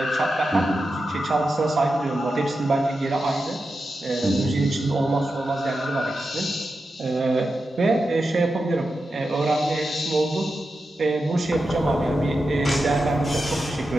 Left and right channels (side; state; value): both; normal; correlation 0.90